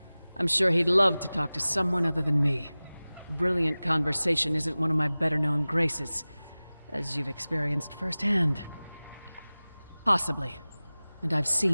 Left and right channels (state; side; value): inverted; both; correlation -0.98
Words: I'm sure he'd love to talk to someone other than me. Brilliant conversation isn't one of my better-known graces, as you've experienced firsthand. Possibly. and I've